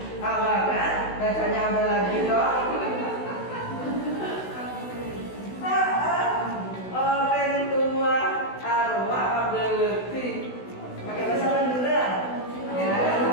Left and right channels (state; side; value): late; right; 16 ms